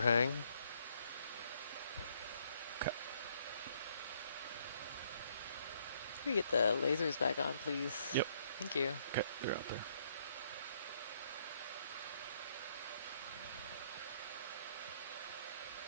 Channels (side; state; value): both; inverted; correlation -0.68